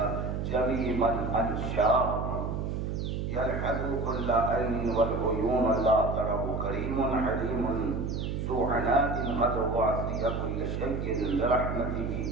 جميع من أنشاه يلحظ كل عين والعيون لا تره كريم حليم ذو عناد قد وعصي كل شيء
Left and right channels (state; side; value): noise; right; hum, 2 dB below the sound